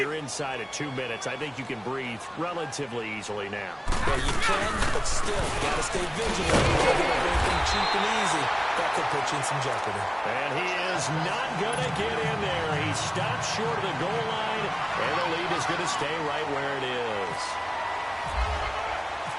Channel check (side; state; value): both; identical; correlation 1.00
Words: inside at 2 minutes. I think you can breathe relatively easily now. Well, you can, but still, got to stay vigilant. Don't give up anything cheap and easy. That could put you in some jeopardy. And he is not going to get in there. He stops short of the goal line, and the lead is going to stay right where it is.